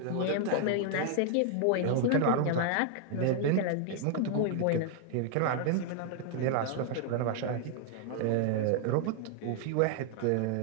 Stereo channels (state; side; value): different; both; correlation 0.00